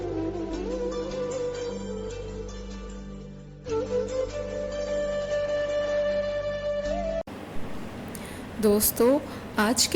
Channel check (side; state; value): both; identical; correlation 1.00